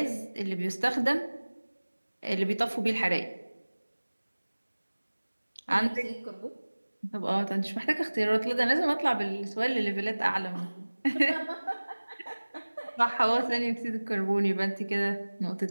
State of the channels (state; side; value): inverted; both; correlation -1.00